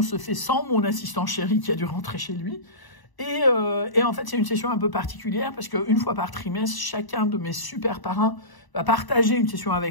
se fait sans mon assistant chéri qui a dû rentrer chez lui. Et en fait, c'est une session un peu particulière parce qu'une fois par trimestre, chacun de mes super parrains va partager une session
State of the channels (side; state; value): right; late; 1.0 ms